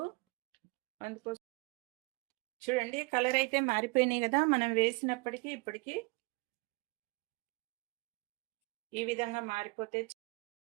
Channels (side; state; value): left; quieter; 27.4 dB